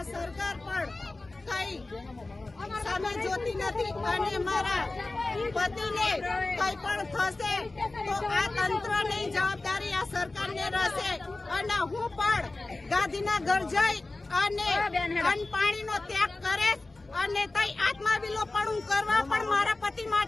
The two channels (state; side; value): quieter; right; 3.1 dB